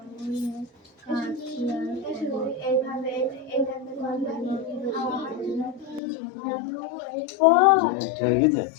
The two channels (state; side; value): drops out; right; at 6.0 s